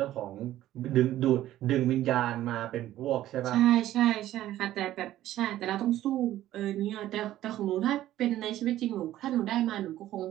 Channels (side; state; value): left; quieter; 13.8 dB